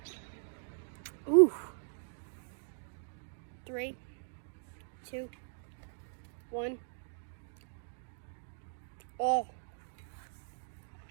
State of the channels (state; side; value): silent; left; digital silence